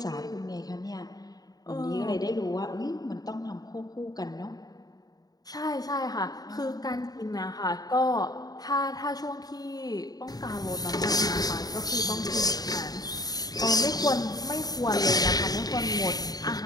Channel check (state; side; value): late; right; 0.18 ms